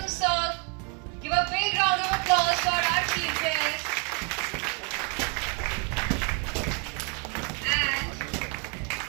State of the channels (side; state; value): left; quieter; 35.9 dB